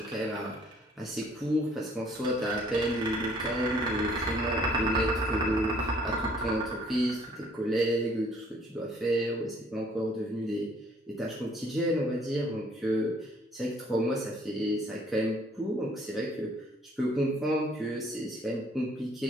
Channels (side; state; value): both; normal; correlation 0.61